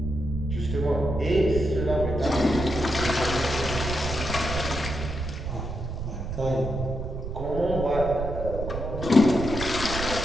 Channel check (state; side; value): noise; right; rumble, 5 dB below the sound